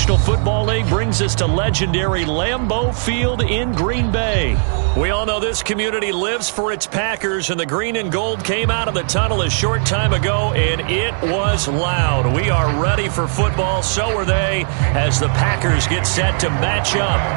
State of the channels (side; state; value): left; silent; 61 dB below the other